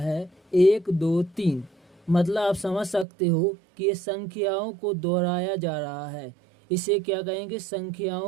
1 2 3। मतलब आप समझ सकते हो कि ये संख्याओं को दोहराया जा रहा है। इसे क्या कहेंगे?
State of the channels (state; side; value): drops out; left; at 3.1 s